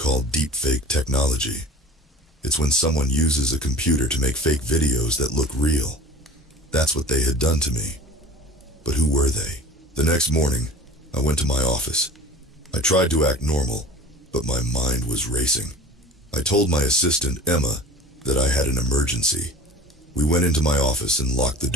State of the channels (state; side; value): normal; both; correlation 0.40